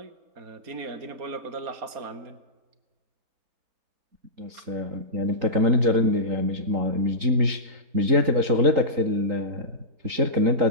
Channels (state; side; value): late; left; 3.8 ms